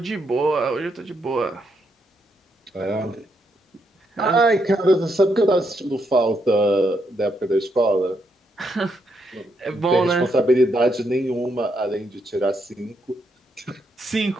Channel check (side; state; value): both; normal; correlation 0.78